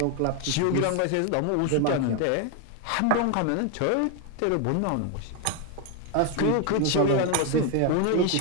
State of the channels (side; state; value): both; different; correlation 0.01